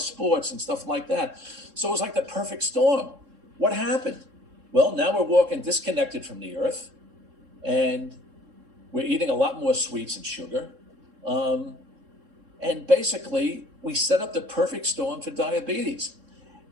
and stuff like that. So it was like the perfect storm. What happened? Well, now we're walking disconnected from the earth, and we're eating a lot more sweets and sugar. And basically, we set up the perfect storm for diabetes.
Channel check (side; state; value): left; late; 3.7 ms